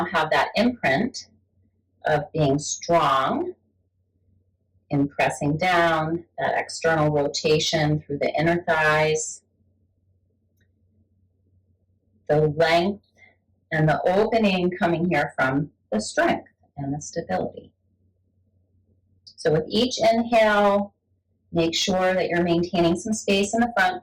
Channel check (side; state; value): both; identical; correlation 1.00